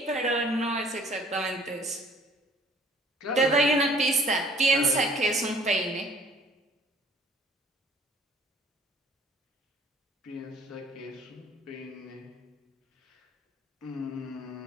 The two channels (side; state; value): both; normal; correlation 0.54